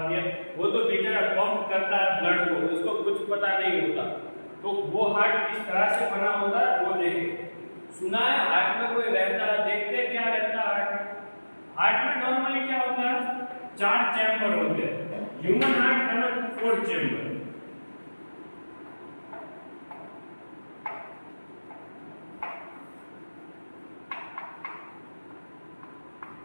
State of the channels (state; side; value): inverted; both; correlation -1.00